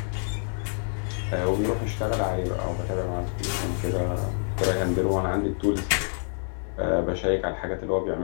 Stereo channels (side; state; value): right; silent; digital silence